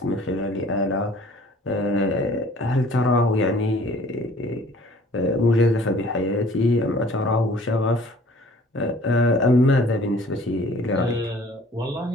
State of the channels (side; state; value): both; normal; correlation 0.52